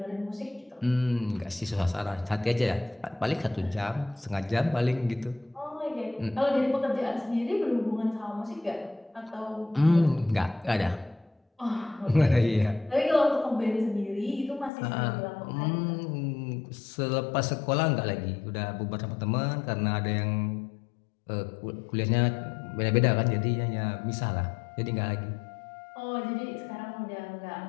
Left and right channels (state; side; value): drops out; right; at 14.7 s